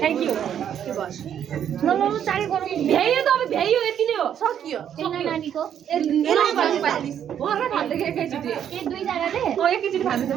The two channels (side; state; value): left; quieter; 9.3 dB